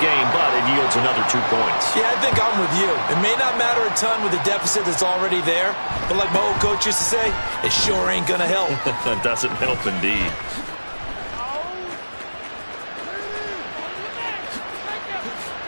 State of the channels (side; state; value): both; inverted; correlation -1.00